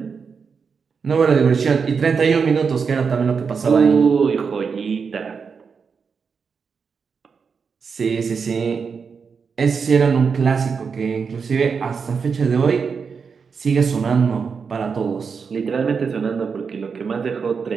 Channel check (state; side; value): quieter; left; 5.7 dB